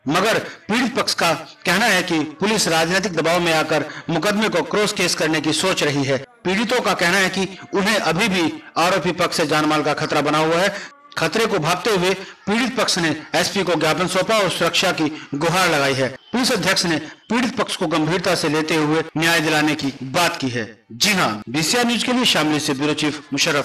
मगर पीड़ित पक्ष का कहना है कि पुलिस राजनीतिक दबाव में आकर मुकदमे को क्रॉस केस करने की सोच रही है। पीड़ितों का कहना है कि उन्हें अभी भी आरोपी पक्ष से जानमाल का खतरा बना हुआ है। खतरे को भांपते हुए पीड़ित पक्ष ने एसपी को ज्ञापन सौंपा और सुरक्षा की गुहार लगाई है। पुलिस अध्यक्ष ने पीड़ित पक्ष को गंभीरता से लेते हुए न्याय दिलाने की बात की है। जी हां, बीसीआर न्यूज के लिए शामली से ब्यूरो चीफ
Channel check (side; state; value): both; identical; correlation 1.00